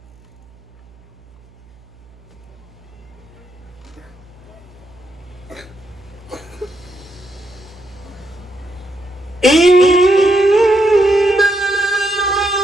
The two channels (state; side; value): noise; right; hum, 26 dB below the sound